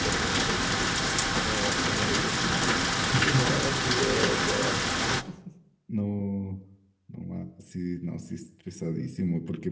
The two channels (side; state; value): both; identical; correlation 1.00